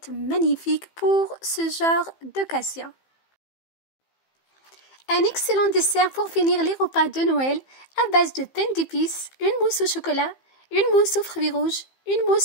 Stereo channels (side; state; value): right; late; 15 ms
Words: magnifique pour ce genre d'occasion. Un excellent dessert pour finir les repas de Noël à base de pain d'épices, une mousse au chocolat, une mousse aux fruits rouges, une